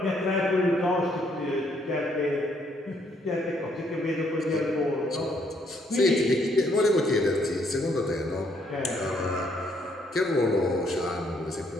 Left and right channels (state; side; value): normal; both; correlation 0.69